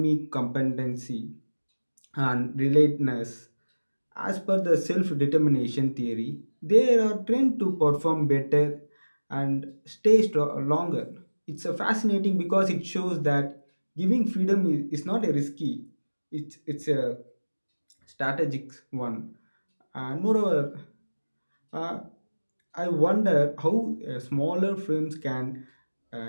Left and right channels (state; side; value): inverted; both; correlation -1.00